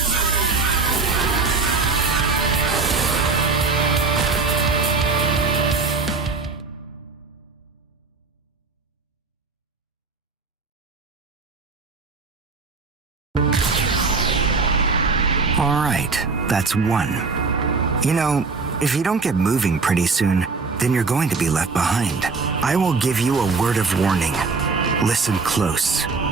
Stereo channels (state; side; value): quieter; left; 4.3 dB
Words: All right, that's one. You know, if you don't get moving pretty soon, then you're going to be left behind. I will give you a word of warning. Listen close.